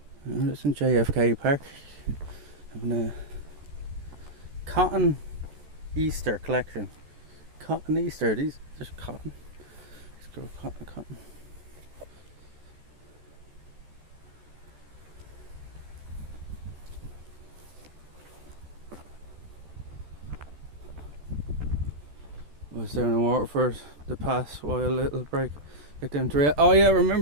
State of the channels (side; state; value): left; late; 14 ms